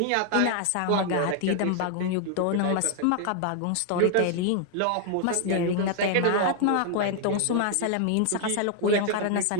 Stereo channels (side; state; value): both; different; correlation 0.00